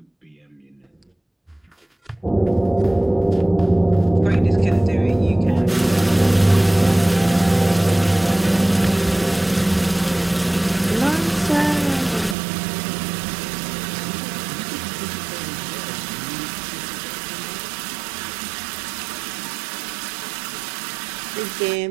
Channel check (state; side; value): drops out; left; at 12.4 s